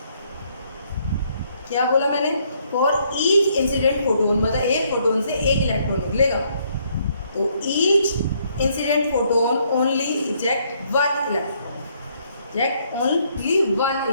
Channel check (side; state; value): both; inverted; correlation -0.70